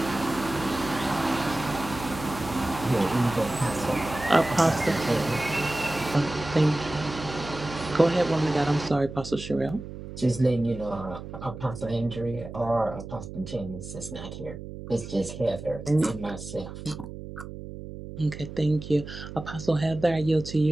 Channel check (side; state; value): right; noise; hum, 11 dB below the sound